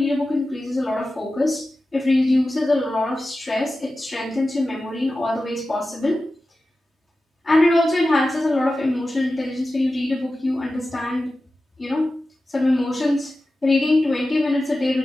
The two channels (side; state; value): both; normal; correlation 0.94